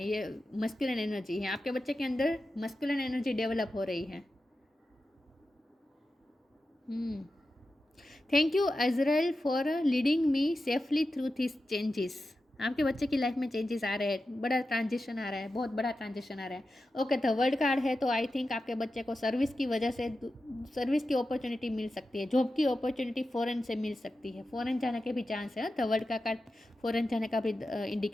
ये मस्कुलिन एनर्जी है आपके बच्चे के अंदर। मस्कुलिन एनर्जी डेवलप हो रही है। Thank you Azrael for leading me safely through this changes. आपके बच्चे की लाइफ में चेंजेस आ रहे हैं, बड़ा ट्रांजिशन आ रहा है, बहुत बड़ा ट्रांजिशन आ रहा है। ओके, द वर्ल्ड कार्ड है, तो आई थिंक आपके बच्चे को सर्विस की वजह से सर्विस की अपॉर्चुनिटी मिल सकती है, जॉब की अपॉर्चुनिटी फॉरेन से मिल सकती है। फॉरेन जाने के भी चांस है। द वर्ल्ड का कार्ड फॉरेन जाने का भी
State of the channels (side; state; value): both; normal; correlation 0.92